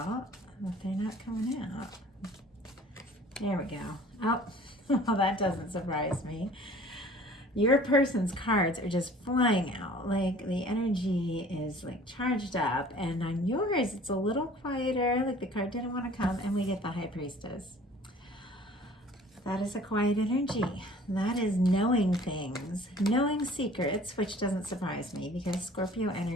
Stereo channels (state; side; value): normal; both; correlation 0.49